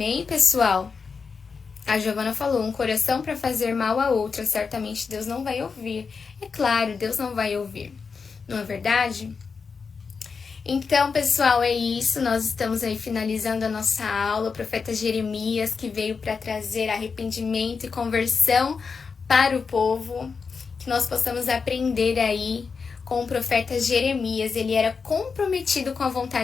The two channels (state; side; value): quieter; right; 5.3 dB